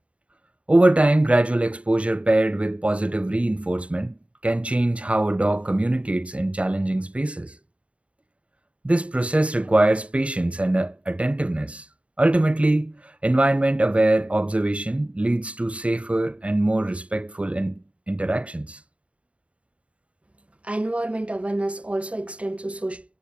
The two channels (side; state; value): left; late; 0.063 ms